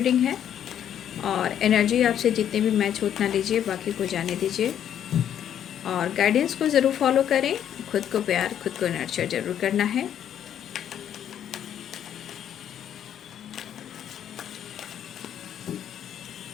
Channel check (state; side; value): quieter; right; 9.8 dB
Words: है और एनर्जी आपसे जितने भी मैच हो उतना लीजिए, बाकी को जाने दीजिए और गाइडेंस को ज़रूर फॉलो करें। खुद को प्यार, खुद को नर्चर ज़रूर करना है।